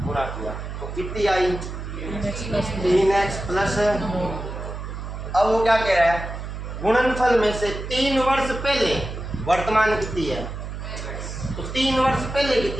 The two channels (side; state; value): right; noise; hum, 7 dB below the sound